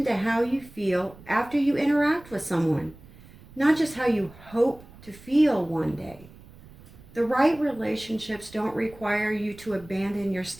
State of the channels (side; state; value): right; noise; rumble, 22 dB below the sound